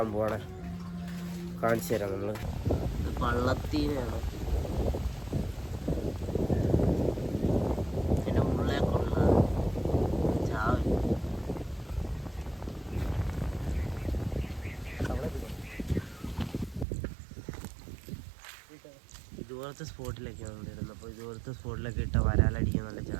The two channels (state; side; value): drops out; left; at 16.9 s